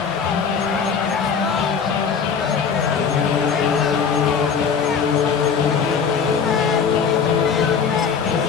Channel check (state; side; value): quieter; right; 6.3 dB